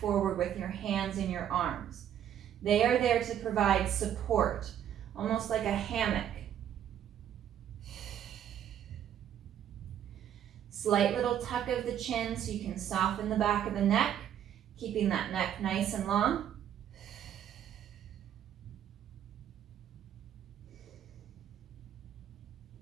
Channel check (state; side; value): quieter; left; 10.1 dB